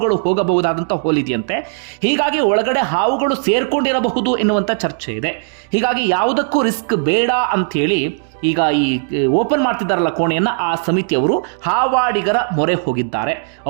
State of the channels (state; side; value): silent; left; digital silence